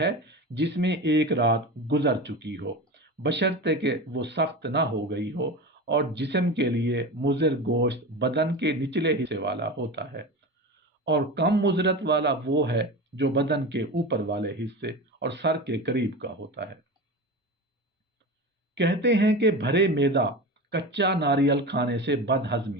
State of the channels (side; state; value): both; normal; correlation 0.27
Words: جس میں ایک رات گزر چکی ہو، بشرطے کہ وہ سخت نہ ہو گئی ہو، اور جسم کے لیے مضر گوشت بدن کے نچلے حصے والا ہوتا ہے، اور کم مضرت والا وہ ہے جو بدن کے اوپر والے حصے اور سر کے قریب کا ہوتا ہے۔ کہتے ہیں کہ بھرے معدہ کچا ناریل کھانے سے بد